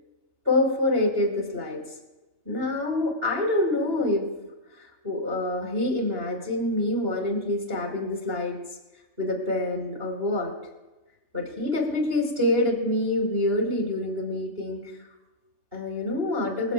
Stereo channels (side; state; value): left; late; 2.8 ms